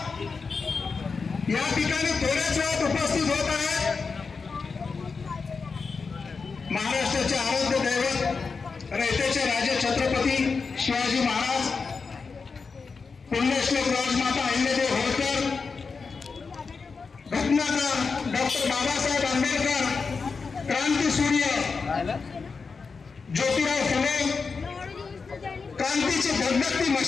या ठिकाणी थोड्याच वेळात उपस्थित होत आहेत. महाराष्ट्राचे आराध्य दैवत, रयतेचे राजे छत्रपती शिवाजी महाराज, पुण्यश्लोक राजमाता अहिल्यादेवी होळकर, घटनाकार डॉक्टर बाबासाहेब आंबेडकर, क्रांतीसूर्य ज्योतिराव फुले, क्रांतीची धगधगती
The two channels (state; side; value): quieter; right; 4.9 dB